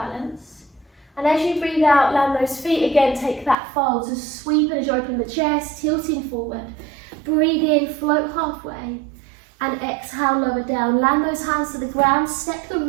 And as you breathe out, land those feet again, take that fold. So sweep as you open the chest, tilting forward. Breathe in, float halfway, and exhale, lower down. Land those hands to the ground, step the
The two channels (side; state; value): left; drops out; at 3.6 s